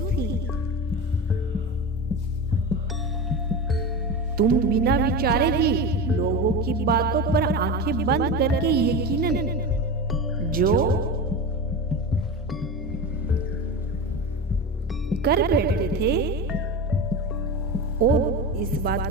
थी। तुम बिना विचारे ही लोगों की बातों पर आंखें बंद करके यकीनन जो कर बैठते थे और इस बात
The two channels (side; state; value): both; normal; correlation 0.24